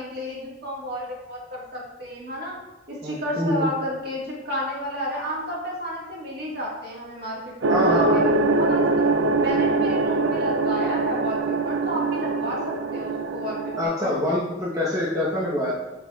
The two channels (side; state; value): both; normal; correlation 0.07